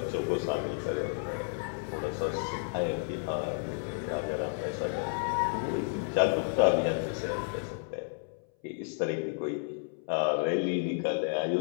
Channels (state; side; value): silent; right; 57 dB below the other